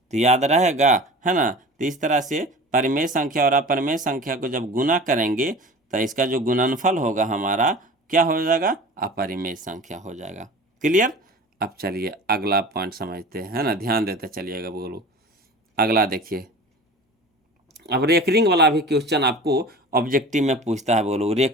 याद रहेगा, है ना। तो इस तरह से परिमेय संख्या और अपरिमेय संख्या को जब गुना करेंगे तो इसका जो गुणनफल होगा हमारा क्या हो जाएगा, अपरिमेय संख्या हो जाएगा। क्लियर। अब चलिए अगला पॉइंट समझते हैं, है ना, ध्यान देते चलिएगा बोलो। अगला देखिए, अब रेकरिंग वाला भी क्वेश्चन आपको ऑब्जेक्टिव में पूछता है, बोलो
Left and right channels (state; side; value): normal; both; correlation 0.38